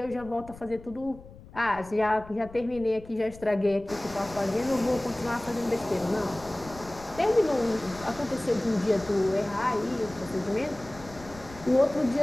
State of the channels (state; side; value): noise; left; rumble, 18 dB below the sound